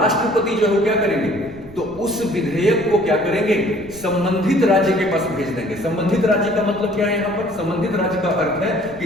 जो है क्या करेंगे, तो उस विधेयक को क्या करेंगे, संबंधित राज्य के पास भेज देंगे। संबंधित राज्य का मतलब क्या है यहाँ पर, संबंधित राज्य का अर्थ है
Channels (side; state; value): right; noise; rumble, 21 dB below the sound